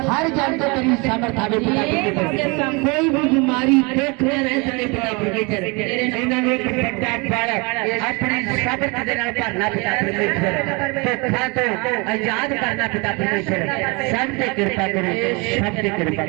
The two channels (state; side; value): quieter; left; 28.9 dB